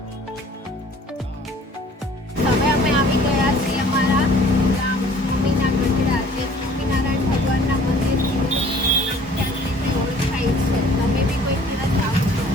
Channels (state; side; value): normal; both; correlation 0.53